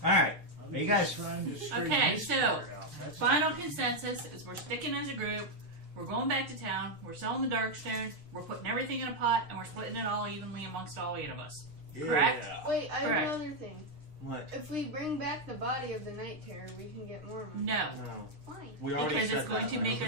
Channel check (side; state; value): left; late; 6.5 ms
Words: All right, I'm you just guys. trying to straighten Okay, this so, part out. That's Final consensus is we're sticking as a group. We're going back to town. We're selling the Darkstone. We're putting everything in a pot, and we're splitting it all evenly amongst all 8 of us. Correct? Yeah. Wait, I have Correct. another thing. What? If we bring back the body of the Night Terror, we can get more money. No, No. Why? We already because said it's going that. to make